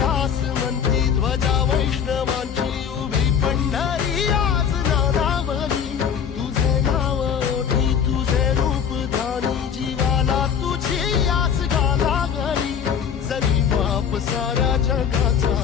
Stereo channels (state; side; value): quieter; right; 7.6 dB